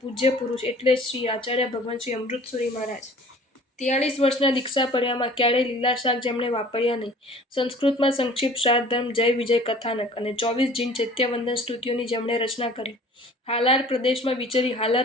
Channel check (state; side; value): normal; both; correlation 0.48